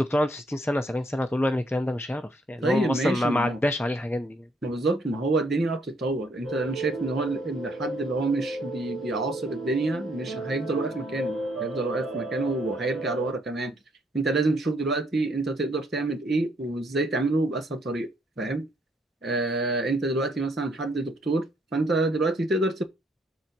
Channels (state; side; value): normal; both; correlation 0.69